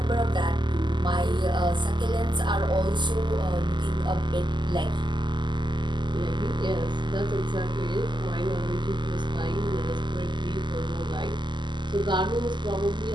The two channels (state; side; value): late; left; 0.22 ms